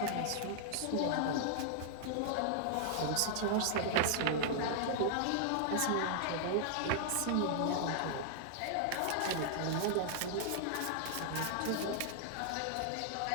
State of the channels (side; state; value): both; different; correlation -0.01